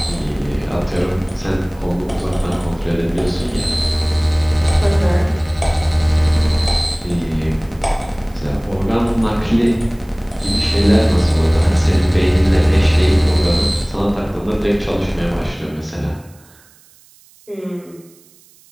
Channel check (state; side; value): noise; right; hiss, 28 dB below the sound